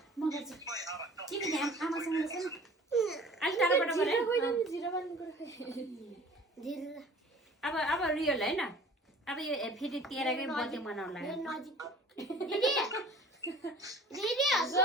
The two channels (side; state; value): both; normal; correlation 0.47